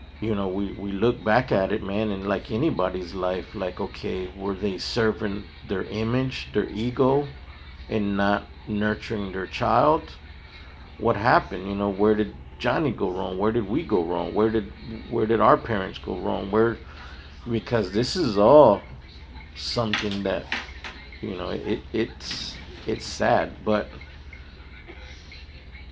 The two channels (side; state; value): both; identical; correlation 1.00